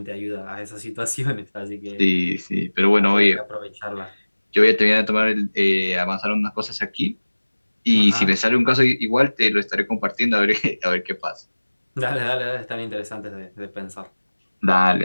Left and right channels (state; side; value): inverted; both; correlation -1.00